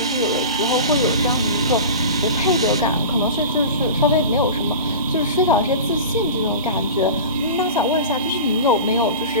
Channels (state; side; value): inverted; both; correlation -0.33